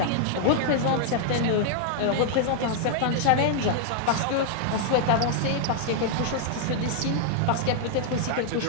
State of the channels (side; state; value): both; different; correlation 0.00